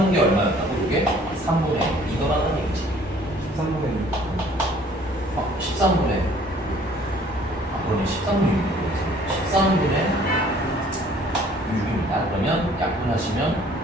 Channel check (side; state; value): both; normal; correlation 0.56